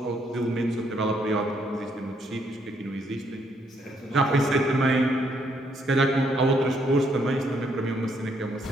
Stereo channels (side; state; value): both; normal; correlation 0.72